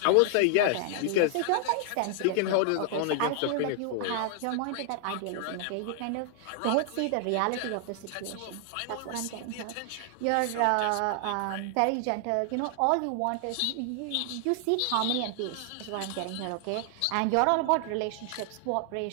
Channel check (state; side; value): different; both; correlation 0.00